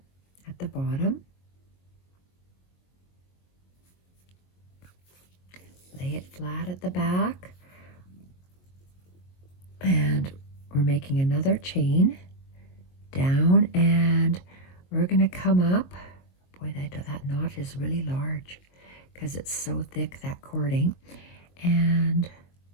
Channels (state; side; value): late; right; 22 ms